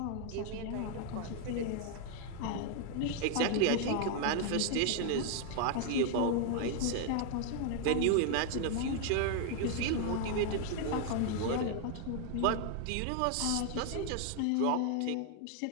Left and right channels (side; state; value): both; different; correlation 0.00